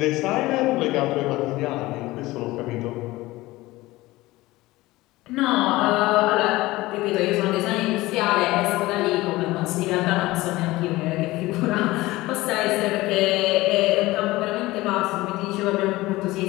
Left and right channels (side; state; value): right; quieter; 19.1 dB